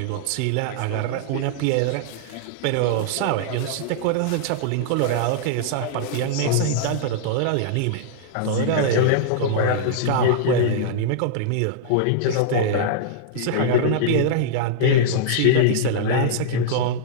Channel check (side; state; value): both; different; correlation -0.02